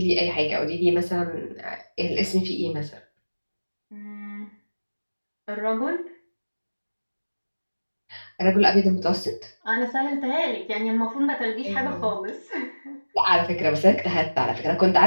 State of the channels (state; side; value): inverted; both; correlation -1.00